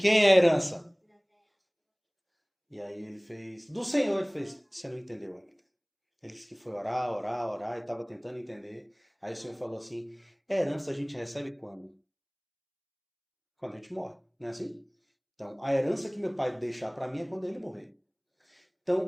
é a herança? E aí ele fez, do Senhor. Ele fez, você não entendeu ainda. Ele disse que foi orar e estava tentando entender. Aí o Senhor falou assim, herança a gente recebe quando? Quando a gente morre, não é assim? Então, a herança que meu pai deixar para mim é quando ele morrer.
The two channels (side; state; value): both; identical; correlation 1.00